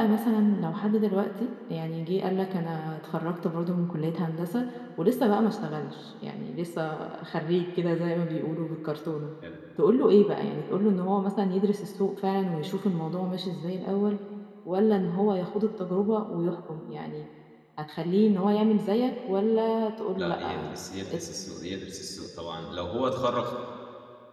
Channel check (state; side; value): identical; both; correlation 1.00